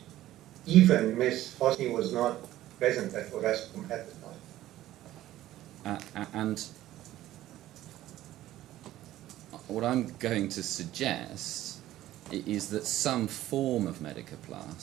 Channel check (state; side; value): quieter; left; 14.4 dB